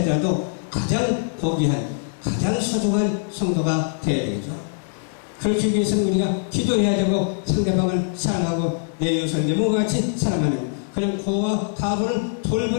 가장 고귀한 가장 소중한 성도가 되어야 되겠죠. 그렇기 위해서는 우리가 기도해야 되고 상대방을 사랑하고 내 이웃을 내 몸과 같이 사랑하는 그런 고와 가부를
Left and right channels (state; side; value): silent; right; digital silence